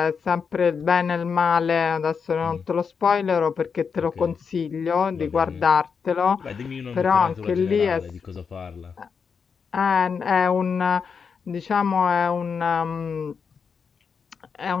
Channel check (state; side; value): quieter; right; 6.0 dB